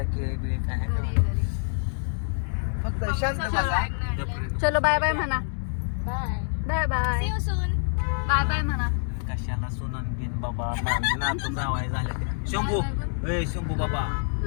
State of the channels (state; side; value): silent; right; digital silence